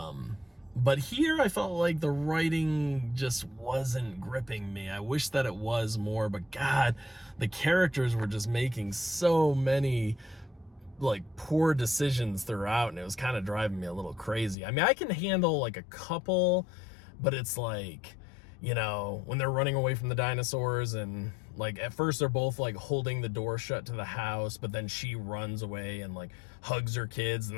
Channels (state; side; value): drops out; right; at 14.6 s